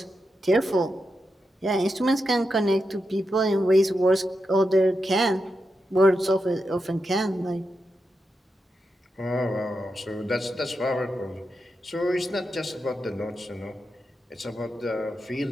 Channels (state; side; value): normal; both; correlation 0.87